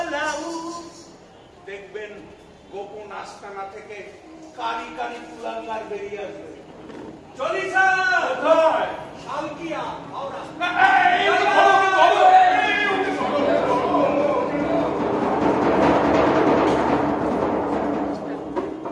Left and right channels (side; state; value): both; identical; correlation 1.00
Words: উ। দেখবেন গোপন আস্তানা থেকে কারি কারি কুলাঙ্গার বেরিয়ে আসবে। চলিসা শালকিয়া হাওড়া।